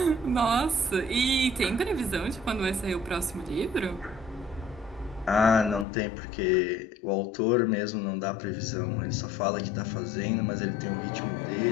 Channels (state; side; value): drops out; right; at 5.9 s